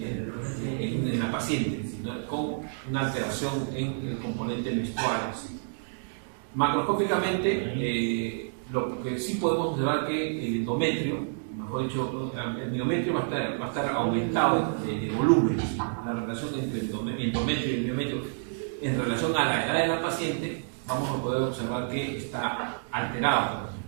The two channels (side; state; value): left; silent; digital silence